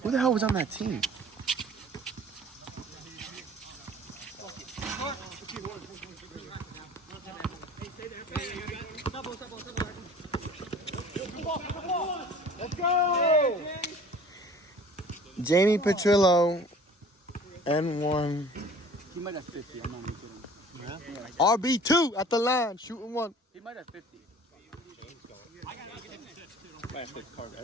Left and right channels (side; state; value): both; normal; correlation 0.48